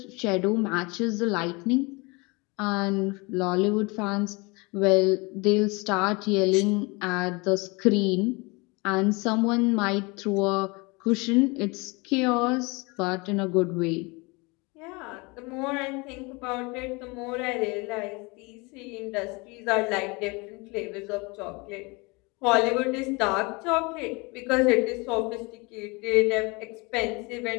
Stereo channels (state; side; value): quieter; right; 27.1 dB